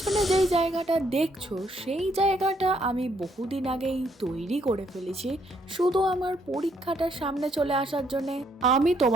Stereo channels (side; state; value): both; normal; correlation 0.71